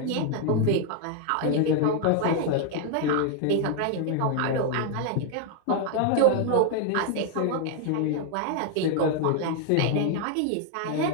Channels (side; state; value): both; different; correlation 0.00